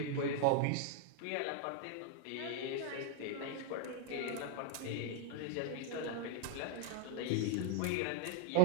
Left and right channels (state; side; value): different; both; correlation 0.01